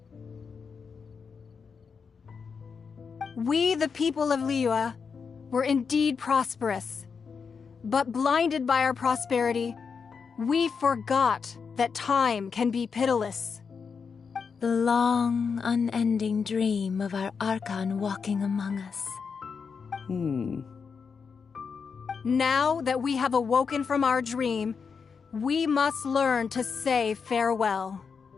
We, the people of Liyue, were indeed prosperous. But blinded by our prosperity, we forgot that time can be pitiless. The long, unending dream of our Archon walking among us. Now that we have awoken from our dream, we must learn to say farewell.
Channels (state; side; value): quieter; right; 5.7 dB